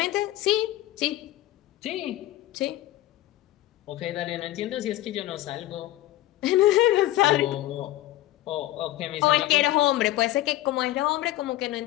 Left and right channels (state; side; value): quieter; right; 15.5 dB